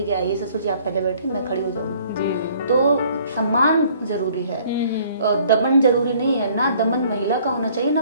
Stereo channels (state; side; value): inverted; both; correlation -0.58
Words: कि आइए ससुर जी आप पहले बैठे, मैं खड़ी हो जाऊंगी। तो सम्मान जरूरी है, दमन जरूरी नहीं है। ना दमन महिला का होना चाहिए ना